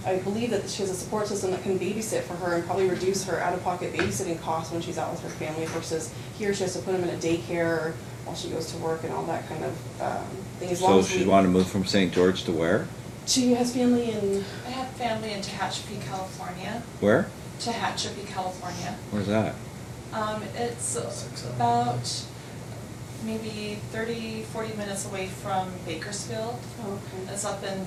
I believe that she has a support system that can babysit for her and probably reduce her out-of-pocket babysitting costs when she's out with her family versus here she has to put them in a daycare while she goes to work and all that kind of thing. As long So as she we- wanna move from St. George to where? She has family in, I have family in Tehachapi, California. Where? Tehachapi, California. Where's that? It's 6 hours. about maybe 40 minutes away from Bakersfield. oh, okay.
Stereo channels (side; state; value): both; identical; correlation 1.00